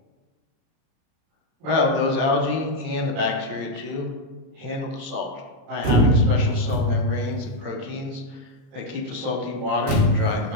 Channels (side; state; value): left; late; 37 ms